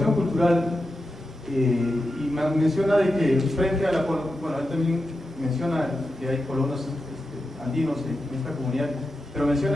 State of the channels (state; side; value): normal; both; correlation 0.89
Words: cultural y menciona de que frente a la... Bueno, él también menciona que hay colonos andinos en esta comunidad, pero